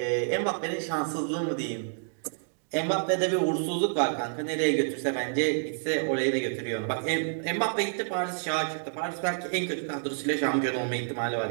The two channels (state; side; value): silent; left; digital silence